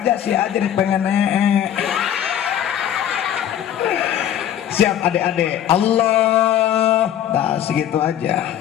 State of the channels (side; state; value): right; quieter; 10.6 dB